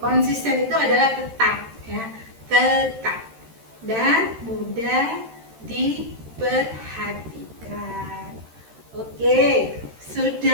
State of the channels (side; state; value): left; late; 13 ms